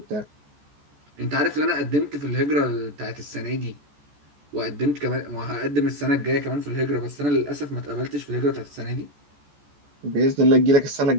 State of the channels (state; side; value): late; left; 14 ms